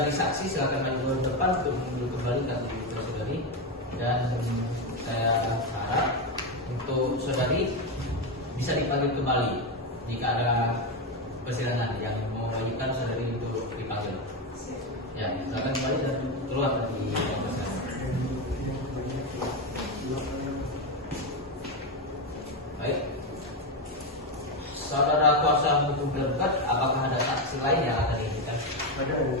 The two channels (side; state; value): both; normal; correlation 0.11